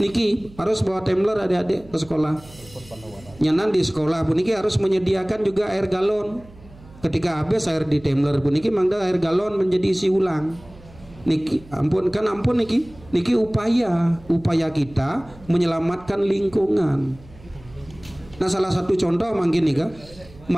Niki harus bawa tumbler adik-adik ke sekolah. Nyanan di sekolah pun niki harus menyediakan juga air galon. Ketika habis air di tumbler pun niki mangda air galon menjadi isi ulang. Niki ampun kan ampun niki upaya kita menyelamatkan lingkungan. Nah, salah satu contoh mungkin nih kan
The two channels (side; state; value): right; noise; hum, 22 dB below the sound